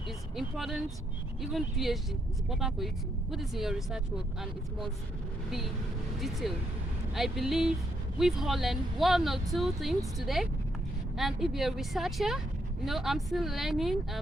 It's important, even PhD, it's important for you to put this in your research work and it must be detailed. I believe we've all learned one or two things today. And if you're a researcher, you know, I'm still learning.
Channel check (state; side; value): normal; both; correlation 0.77